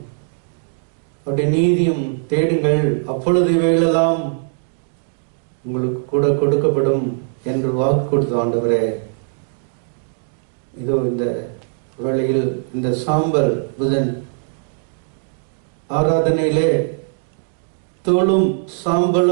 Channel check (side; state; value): left; silent; digital silence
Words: அவருடைய நீதியும் தேடுங்கள், அப்பொழுது இவைகளெல்லாம் உங்களுக்கு கூட கொடுக்கப்படும் என்று வாக்கு கொடுத்த ஆண்டவரே, இதோ இந்த வேளையில் இந்த சாம்பல் புதன் ஆராதனையிலே தோளும்